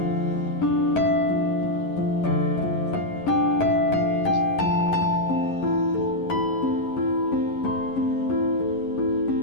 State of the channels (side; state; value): right; late; 11 ms